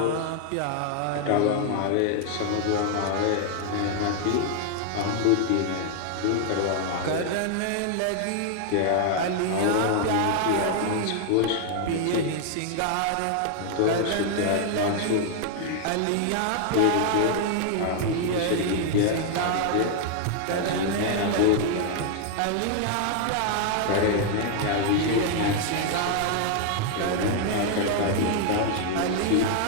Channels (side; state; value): both; different; correlation 0.00